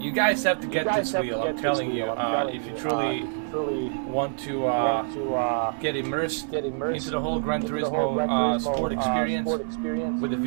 guys have to get this wheel, I'm telling you. If you truly want to get immersed into the whole Gran Turismo sport experience with the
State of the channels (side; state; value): left; silent; digital silence